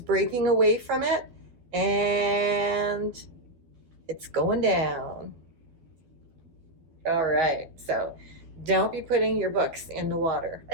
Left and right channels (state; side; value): late; left; 12 ms